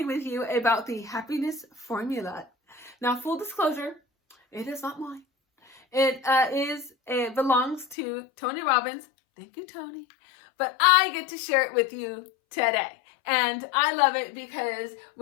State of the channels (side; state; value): right; drops out; at 8.0 s